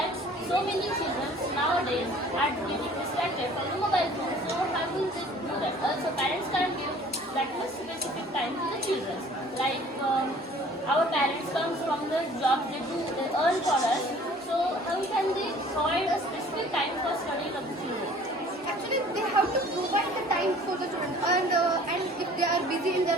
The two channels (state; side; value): normal; both; correlation 0.51